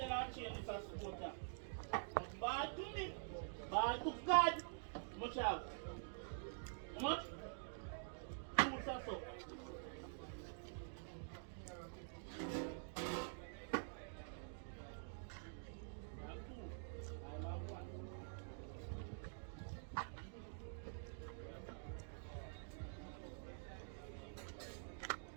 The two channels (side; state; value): left; silent; digital silence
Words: I'll change this as supporter. Ball to me. Ball to God. Much out. How much? 2 or so.